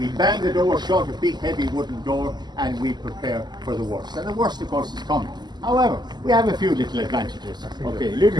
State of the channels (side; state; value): left; late; 0.21 ms